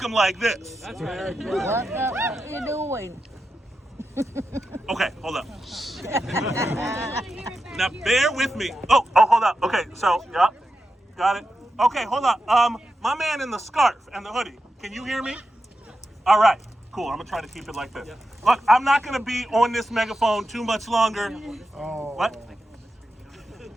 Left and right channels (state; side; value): normal; both; correlation 0.89